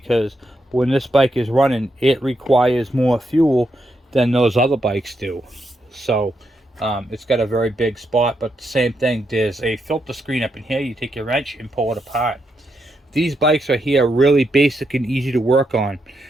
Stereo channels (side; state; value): both; normal; correlation 0.81